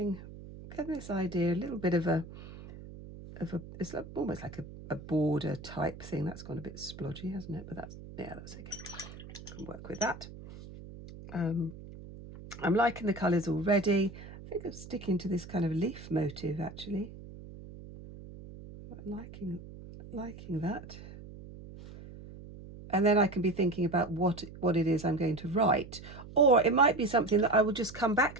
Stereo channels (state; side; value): noise; right; hum, 15 dB below the sound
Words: this idea, a little bit of a it's like, almost like a border type thing. That's gone a bit splodgy, hasn't it? But that's okay. I can work with that. I'm liking the colours already. I think I'm sticking to this kind of leaf motive, actually. Liking that. And then I can be thinking about what it is I'm going to write. Or it might be something that I will just come back